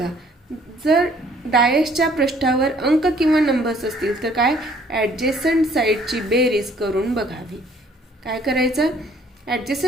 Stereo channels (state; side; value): normal; both; correlation 0.60